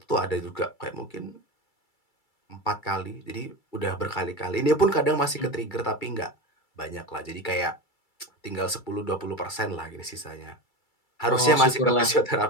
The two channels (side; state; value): right; late; 2.3 ms